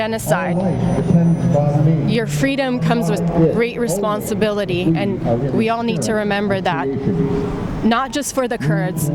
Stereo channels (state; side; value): identical; both; correlation 1.00